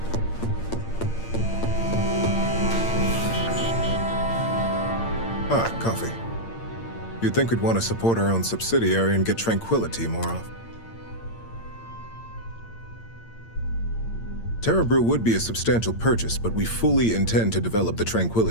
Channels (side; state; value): right; late; 8.8 ms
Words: Ah, coffee. You'd think we'd want to support our own subsidiary and get tranquility more often. Terra Brew would be a substantial purchase, but we fully intend to develop the